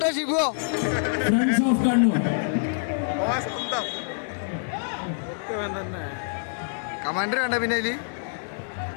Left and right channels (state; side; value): silent; right; digital silence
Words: ഷിബു കമാൻഡർ വേണ്ട. പിന്നെ